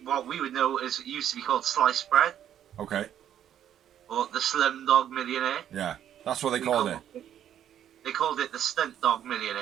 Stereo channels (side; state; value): left; quieter; 10.3 dB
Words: what we would know is it used to be called Sliced Bread, Okay. or the Slim Dog Millionaire. Yeah. That's what they called it. They called it the Stunt Dog Millionaire.